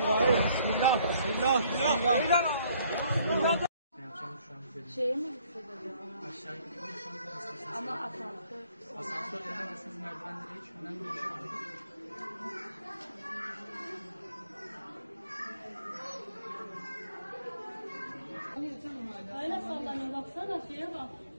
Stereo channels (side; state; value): both; inverted; correlation -0.63